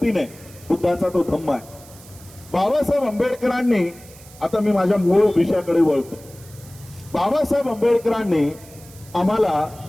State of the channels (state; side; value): noise; right; hiss, 22 dB below the sound